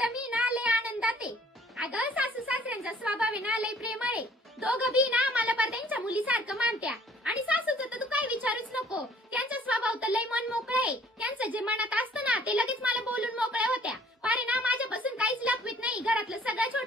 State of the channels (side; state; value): both; normal; correlation 0.56